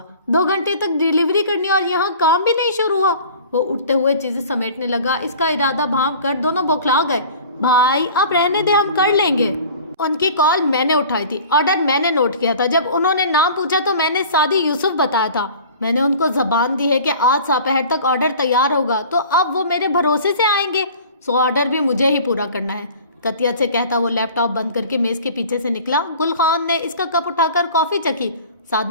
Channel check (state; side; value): inverted; both; correlation -0.44